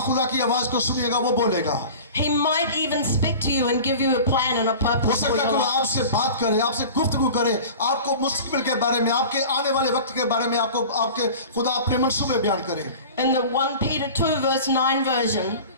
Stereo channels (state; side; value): inverted; both; correlation -0.38